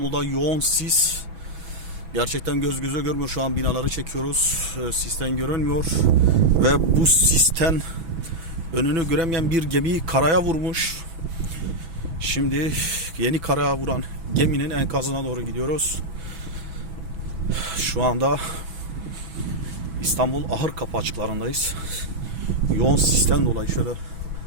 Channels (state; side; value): late; left; 6.1 ms